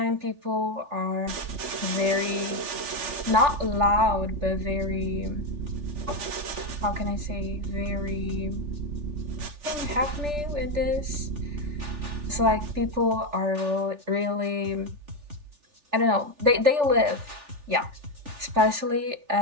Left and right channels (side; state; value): left; late; 3.4 ms